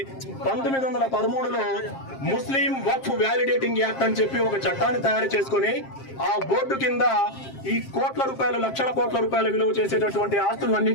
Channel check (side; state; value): right; late; 7.5 ms